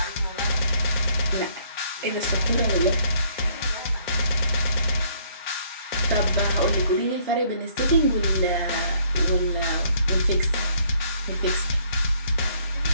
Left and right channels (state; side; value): inverted; both; correlation -0.64